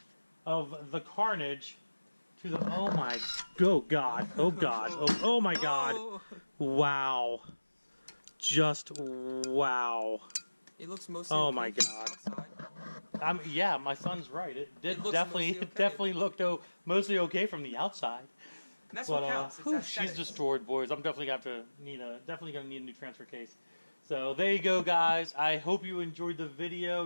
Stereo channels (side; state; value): both; inverted; correlation -1.00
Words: of the carnage to the. Oh my. Oh God. Oh God. Oh my God. Wow. Just wow. It looks mostly. Oh my God. Yeah, my son's right. It definitely looked mostly okay from the outside. And that's what counts. She's destroyed, boys. I'm definitely gonna need a new transfer case. So there you go, guys. I hope you enjoyed the video.